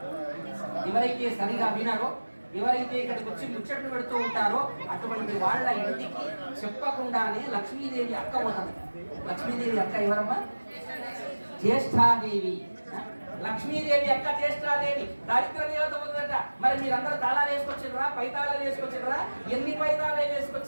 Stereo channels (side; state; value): both; inverted; correlation -1.00